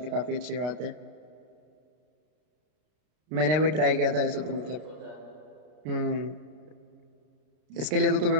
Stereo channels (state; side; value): late; left; 33 ms